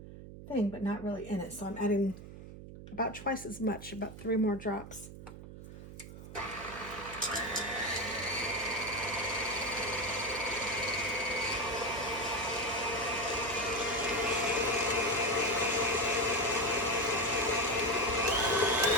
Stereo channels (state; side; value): noise; right; hum, 14 dB below the sound